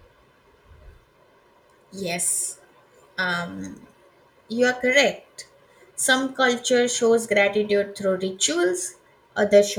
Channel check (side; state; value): both; identical; correlation 1.00